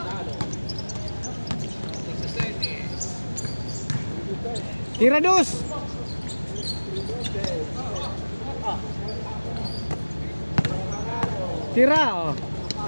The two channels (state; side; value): inverted; both; correlation -1.00